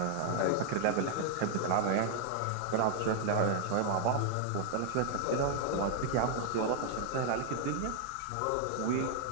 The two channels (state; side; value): different; both; correlation 0.00